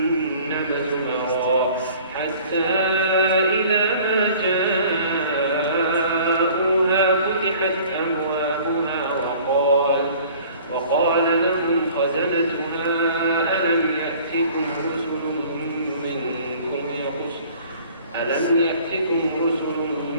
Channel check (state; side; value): inverted; both; correlation -0.50